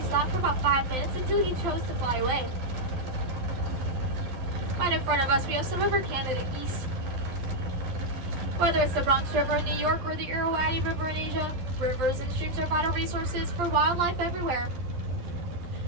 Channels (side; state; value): left; late; 12 ms